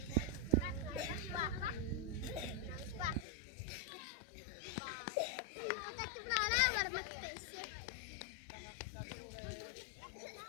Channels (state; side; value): drops out; right; at 3.2 s